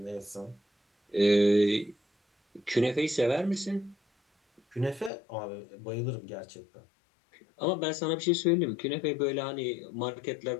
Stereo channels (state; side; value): drops out; right; at 5.1 s